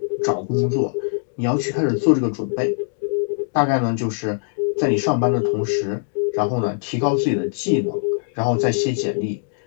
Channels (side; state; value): right; silent; digital silence